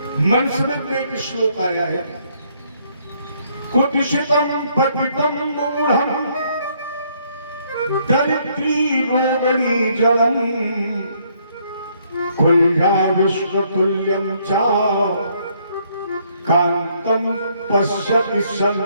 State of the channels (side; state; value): both; inverted; correlation -0.68